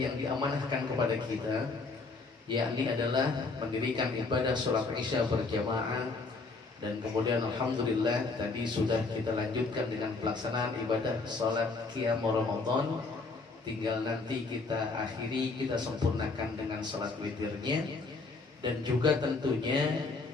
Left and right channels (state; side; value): quieter; right; 3.9 dB